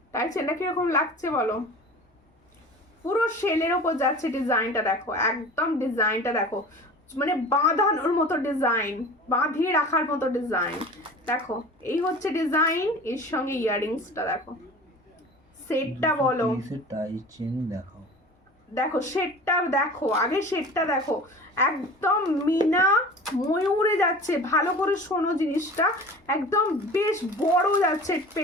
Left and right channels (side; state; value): both; normal; correlation 0.39